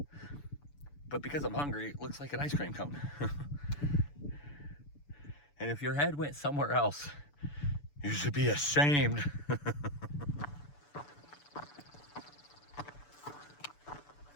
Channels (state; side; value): late; right; 6.9 ms